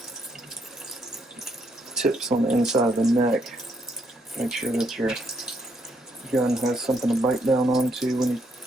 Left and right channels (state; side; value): normal; both; correlation 0.74